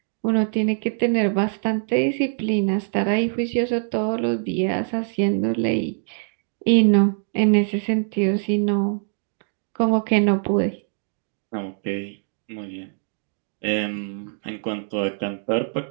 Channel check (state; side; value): silent; left; digital silence